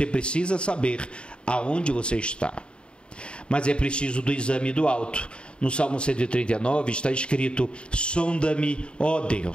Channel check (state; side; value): late; right; 0.053 ms